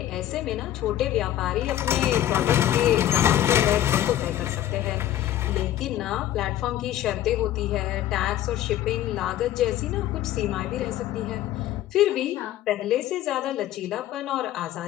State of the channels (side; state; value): right; quieter; 12.6 dB